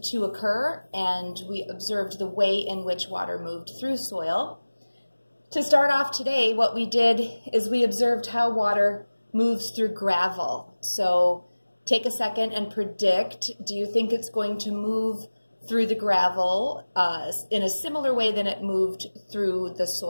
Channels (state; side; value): inverted; both; correlation -1.00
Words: to occur, and we observed the way in which water moved through soil. To start off today, what we did is we observed how water moves through gravel. So take a second and predict, do you think it's going to move through the gravel in a similar way than it moved through the